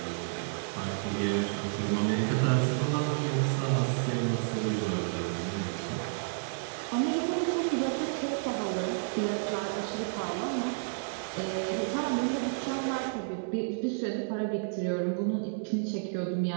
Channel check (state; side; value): silent; left; 56 dB below the other